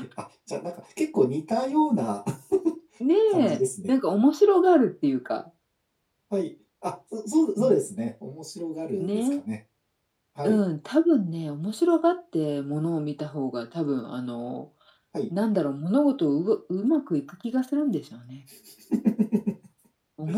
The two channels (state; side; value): identical; both; correlation 1.00